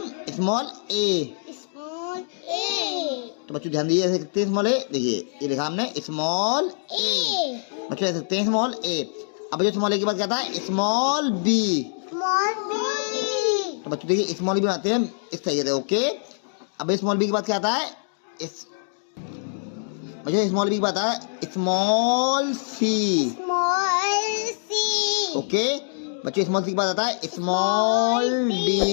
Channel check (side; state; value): right; silent; digital silence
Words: स्मॉल ए। तो बच्चों ध्यान दिए, ऐसे लिखते हैं स्मॉल ए। देखिए ये लिखा हमने स्मॉल ए। बच्चों ऐसे लिखते हैं स्मॉल ए। अब बच्चों स्मॉल ए के बाद क्या था, स्मॉल बी। तो बच्चों देखिए स्मॉल बी बनाते हैं इस तरीके से, ओके। अब स्मॉल बी के बाद क्या आता है, बच्चों स्मॉल बी के बाद आता है स्मॉल सी। ओके बच्चों स्मॉल सी के बाद आता है स्मॉल